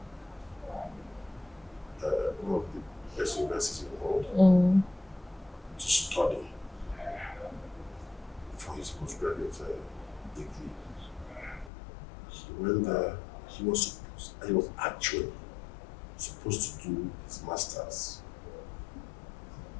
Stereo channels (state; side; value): drops out; right; at 11.7 s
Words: one of the best universities in the world, to study for his postgraduate degree. He went there. He was actually supposed to do his master's